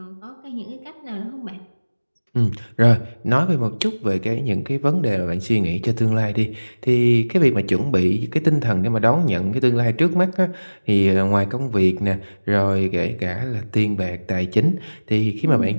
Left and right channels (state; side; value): inverted; both; correlation -1.00